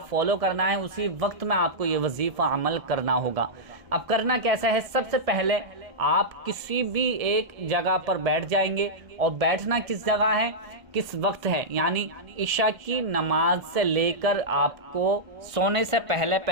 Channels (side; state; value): left; late; 1.3 ms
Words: فالو کرنا ہے، اسی وقت میں آپ کو یہ وظیفہ عمل کرنا ہوگا۔ اب کرنا کیسا ہے، سب سے پہلے آپ کسی بھی ایک جگہ پر بیٹھ جائیں گے، اور بیٹھنا کس جگہ ہے، کس وقت ہے، یعنی عشاء کی نماز سے لے کر آپ کو سونے سے